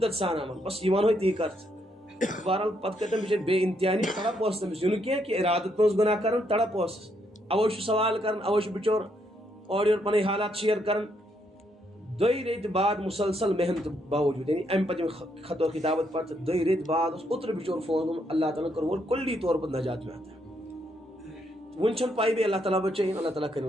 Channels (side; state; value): both; normal; correlation 0.75